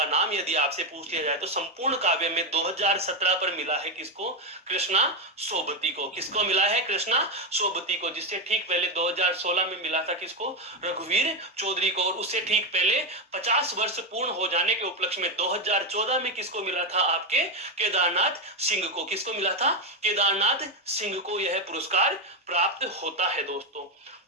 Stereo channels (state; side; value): normal; both; correlation 0.08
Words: नाम यदि आपसे पूछ लिया जाए तो संपूर्ण काव्य में 2017 पर मिला है किसको? कृष्णा सोबती को। किसको मिला है? कृष्णा सोबती को। जिससे ठीक पहले 2016 में मिला था किसको? रघुवीर चौधरी को। और उससे ठीक पहले 50 वर्ष पूर्ण हो जाने के उपलक्ष्य में 2014 में किसको मिला था? आपके केदारनाथ सिंह को। किसको मिला था? केदारनाथ सिंह को यह पुरस्कार प्राप्त होता है दोस्तों।